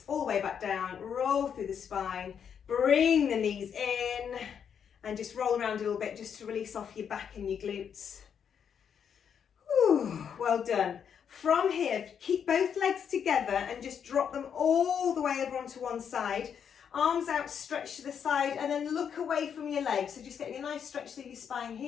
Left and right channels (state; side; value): quieter; right; 7.7 dB